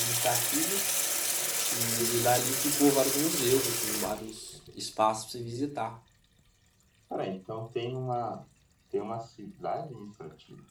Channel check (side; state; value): both; identical; correlation 1.00